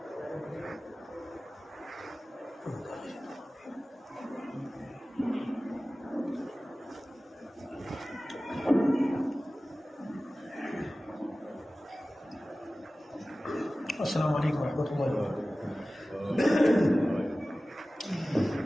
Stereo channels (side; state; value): both; normal; correlation 0.97